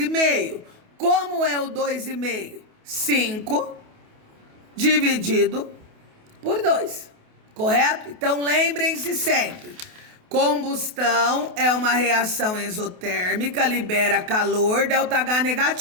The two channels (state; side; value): late; left; 28 ms